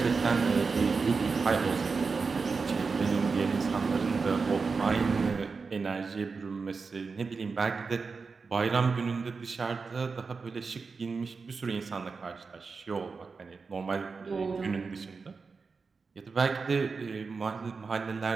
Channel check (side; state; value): left; quieter; 4.7 dB